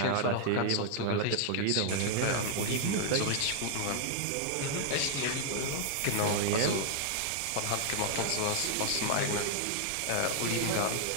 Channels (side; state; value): both; different; correlation 0.00